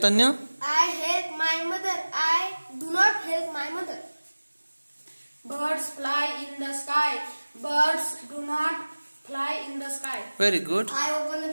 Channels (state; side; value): inverted; both; correlation -1.00